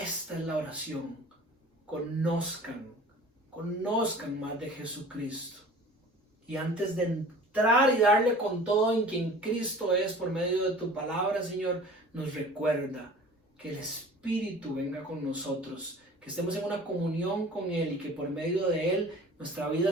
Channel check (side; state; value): both; normal; correlation 0.44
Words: es la oración, conozcan más de Jesucristo. Y antes de entrar y darle con todo en quien Cristo es por medio de tu palabra, Señor, nos recuerda que el Espíritu venga con nosotros, que estemos en una comunión con Él y que por medio de Él nuestra